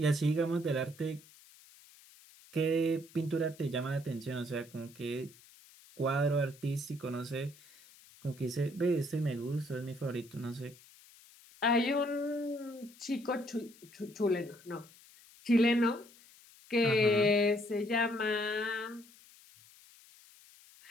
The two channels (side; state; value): left; noise; hiss, 24 dB below the sound